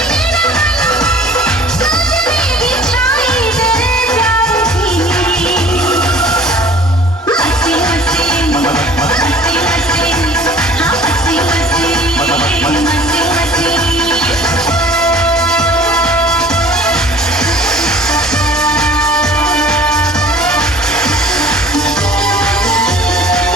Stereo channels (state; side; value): normal; both; correlation 0.49